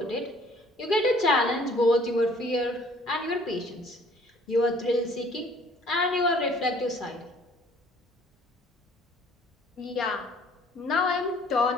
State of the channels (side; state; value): both; normal; correlation 0.56